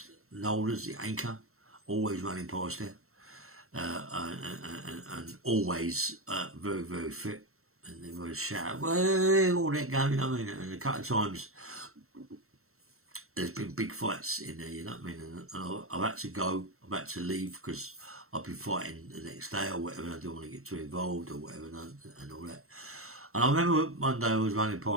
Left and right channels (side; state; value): left; late; 0.63 ms